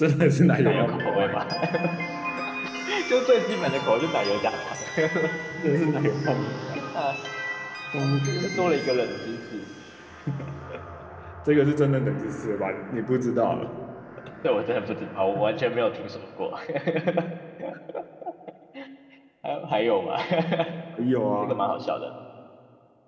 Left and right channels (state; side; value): identical; both; correlation 1.00